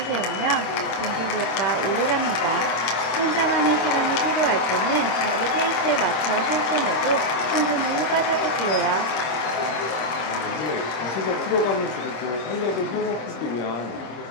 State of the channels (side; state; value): right; late; 26 ms